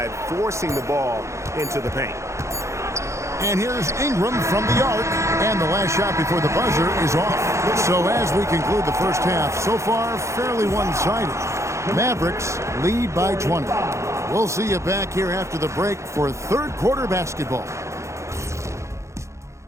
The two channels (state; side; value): late; left; 0.14 ms